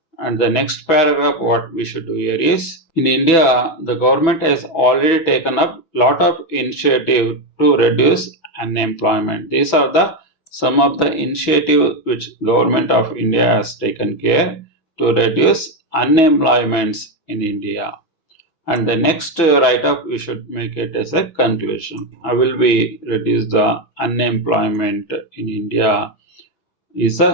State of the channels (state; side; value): late; right; 6.1 ms